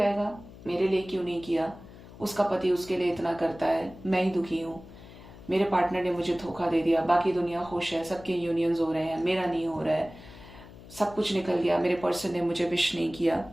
मेरे लिए क्यों नहीं किया, उसका पति उसके लिए इतना करता है, मैं ही दुखी हूं, मेरे पार्टनर ने मुझे धोखा दे दिया, बाकी दुनिया खुश है, सबके यूनियंस हो रहे हैं, मेरा नहीं हो रहा है, सब कुछ निकल गया, मेरे पर्सन ने मुझे विश नहीं किया।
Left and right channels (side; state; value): left; noise; hum, 18 dB below the sound